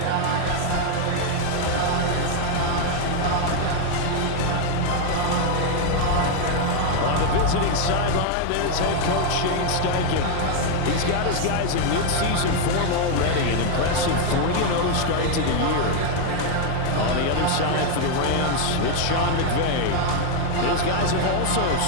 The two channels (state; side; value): different; both; correlation 0.01